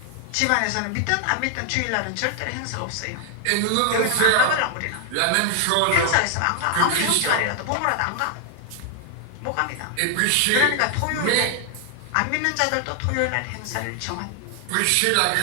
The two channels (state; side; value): different; both; correlation 0.00